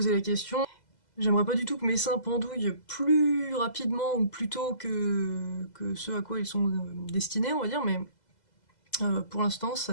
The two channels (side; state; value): right; late; 2.0 ms